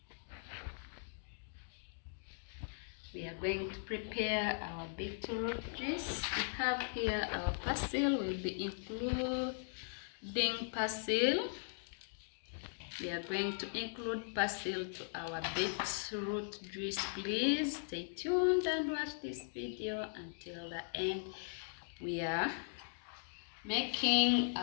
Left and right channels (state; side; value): silent; right; digital silence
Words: We are going to prepare our beetroot juice. We have here our Persely. We'll be including Persely. We are going to include Persely to our beetroot juice. Please stay tuned and watch this video until the end. We are making